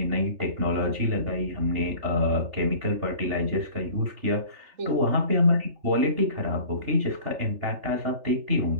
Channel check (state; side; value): late; left; 3.4 ms